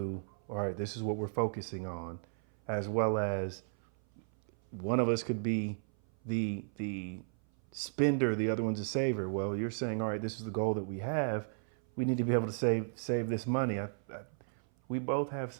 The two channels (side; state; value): left; silent; 55 dB below the other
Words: all right, this is what we're focusing on, as well as one of us could be the spender, the other one's a saver. Well, you're saying, all right, this is the goal that we have. We need to be able to save this money. We both have